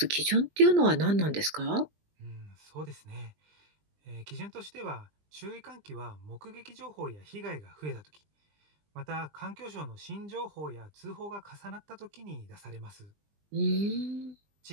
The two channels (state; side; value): late; left; 20 ms